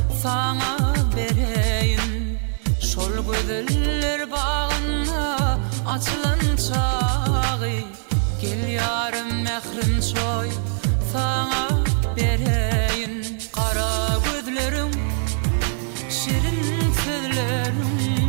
sana bereyim. Şol gözler bağına açılan çağı. Gel yarım mehrim çoy sana bereyim. Kara gözlerim, şirin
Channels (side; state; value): left; silent; 64 dB below the other